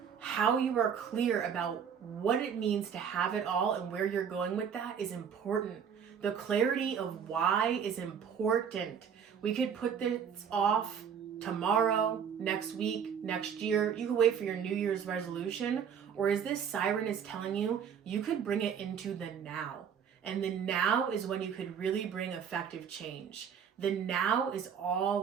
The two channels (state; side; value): quieter; left; 7.6 dB